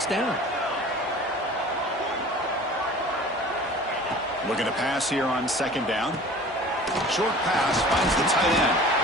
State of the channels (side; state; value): both; normal; correlation 0.43